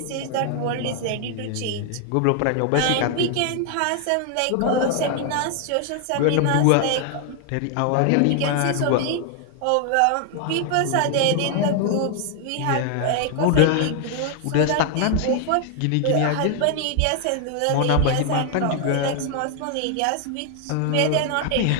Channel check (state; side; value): different; both; correlation 0.00